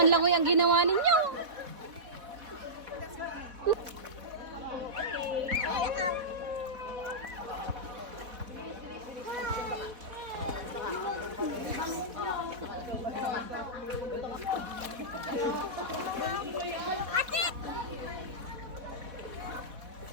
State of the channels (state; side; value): late; left; 4.2 ms